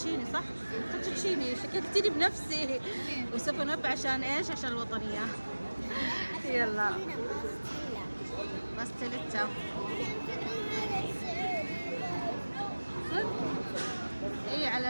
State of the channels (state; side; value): inverted; both; correlation -1.00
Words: صح؟ فوتوتشيني شككتني بنفسي. وسوف نب عشان ايش؟ عشان الوطنية. يلا باستيليتا. اي